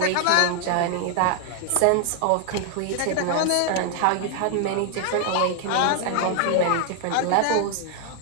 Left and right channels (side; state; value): both; different; correlation 0.00